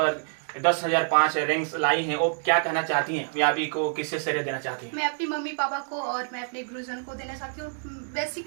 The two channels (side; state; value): left; silent; digital silence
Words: 10,005 रैंक्स लाई हैं, वो क्या कहना चाहती हैं? कामयाबी को किससे श्रेय देना चाहती हैं? मैं अपनी मम्मी पापा को और मैं अपने गुरुजन को देना चाहती हूँ।